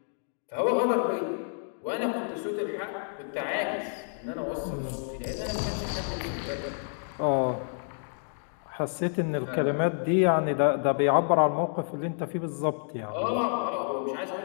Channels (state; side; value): silent; right; digital silence